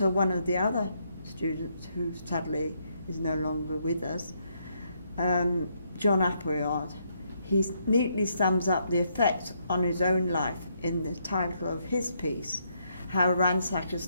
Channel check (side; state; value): both; inverted; correlation -0.75